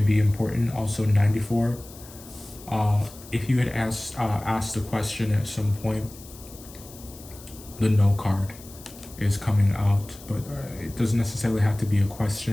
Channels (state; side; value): noise; left; hiss, 19 dB below the sound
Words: be important. Also 94. If you had asked a question at some point, the no card is coming out, but it doesn't necessarily have to be a